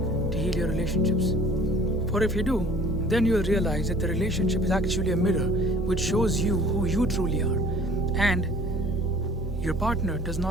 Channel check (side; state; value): both; normal; correlation 0.50